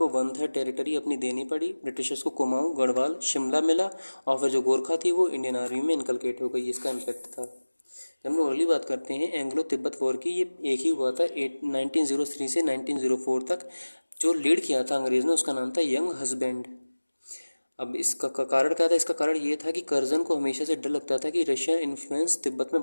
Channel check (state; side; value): inverted; both; correlation -1.00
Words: 1/3 टेरिटरी अपनी देनी पड़ी। ब्रिटिशर्स को कुमाऊं, गढ़वाल, शिमला मिला और फिर जो गोरखा थी वो इंडियन आर्मी में इनकलकेट हो गई। इसका इम्पैक्ट था। जब हम लोग अगली बात करते हैं एंग्लो तिब्बत वॉर की, ये एक ही हुआ था 1903 से 1904 तक। जो लीड किया था अंग्रेज़ ने उसका नाम था यंग हस्बैंड। अब इसका कारण क्या था? इसका कारण ये था कि कर्जन को हमेशा से डर लगता था कि रशियन इन्फ्लुएंस तिब्बत में